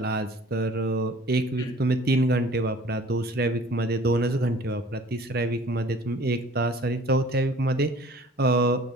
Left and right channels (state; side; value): normal; both; correlation 0.49